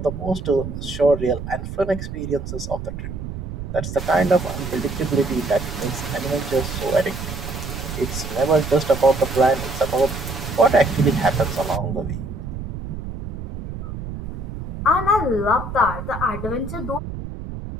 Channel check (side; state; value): right; noise; rumble, 7 dB below the sound